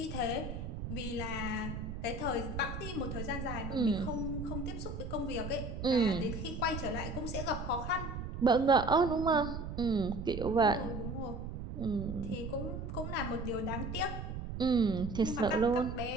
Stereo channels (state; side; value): noise; right; rumble, 6 dB below the sound